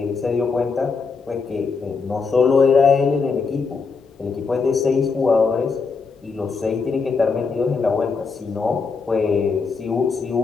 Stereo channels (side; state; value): right; quieter; 4.9 dB